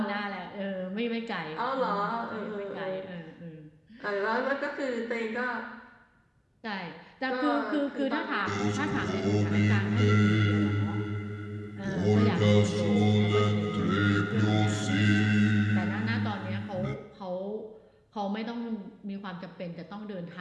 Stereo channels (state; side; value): identical; both; correlation 1.00